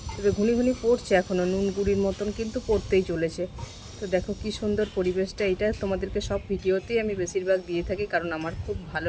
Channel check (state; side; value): identical; both; correlation 1.00